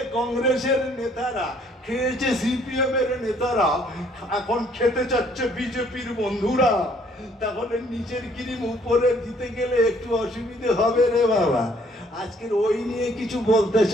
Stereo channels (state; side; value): normal; both; correlation 0.63